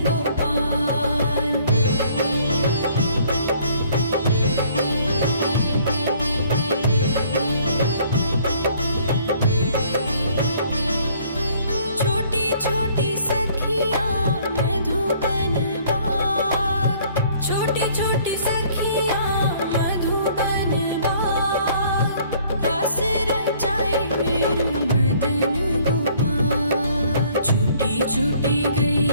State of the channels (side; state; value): both; inverted; correlation -0.59